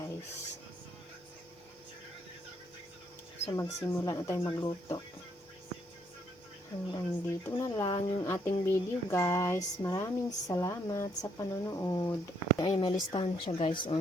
So magsimula na tayo magluto. Hanggang dito na lang yung ating video guys. Maraming salamat sa panonood. Ay, may listahan siya guys.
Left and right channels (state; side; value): normal; both; correlation 0.71